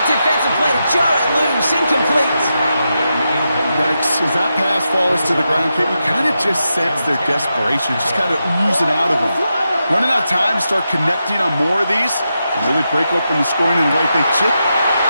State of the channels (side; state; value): both; inverted; correlation -0.87